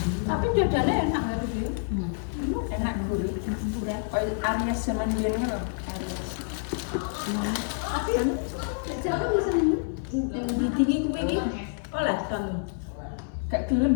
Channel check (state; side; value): silent; right; 58 dB below the other